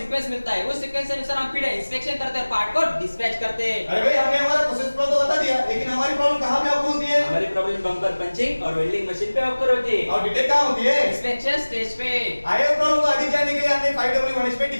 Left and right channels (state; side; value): inverted; both; correlation -1.00